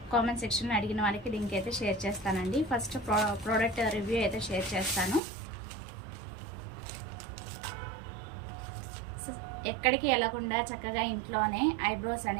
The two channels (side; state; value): left; drops out; at 5.2 s